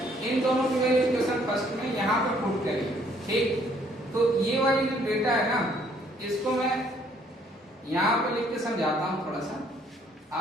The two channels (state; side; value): normal; both; correlation 0.64